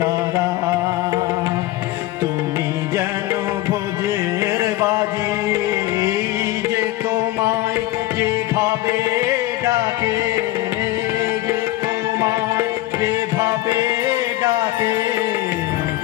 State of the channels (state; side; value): quieter; right; 16.5 dB